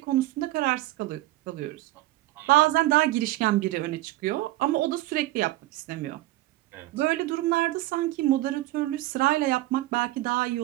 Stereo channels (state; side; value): quieter; left; 17.2 dB